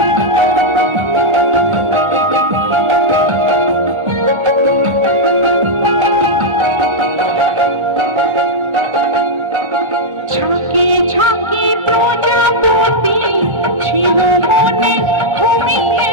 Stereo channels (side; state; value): left; late; 1.3 ms